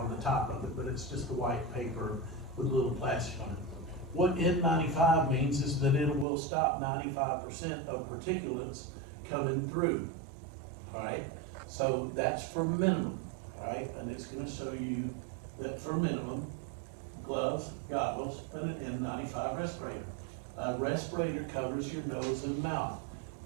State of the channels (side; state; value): left; drops out; at 6.2 s